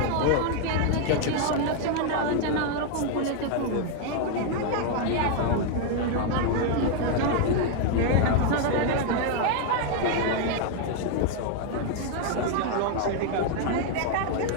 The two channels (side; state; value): both; different; correlation 0.00